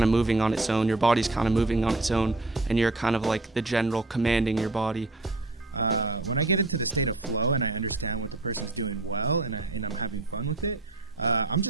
of moving on its own, your body's kind of moving on its own, and you're kind of like the general commanding your body. When I get into the state of flow and I understand what the person's doing well and I'm having fun with it, I'm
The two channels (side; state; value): left; quieter; 3.0 dB